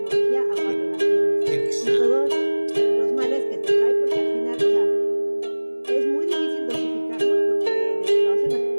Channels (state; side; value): inverted; both; correlation -1.00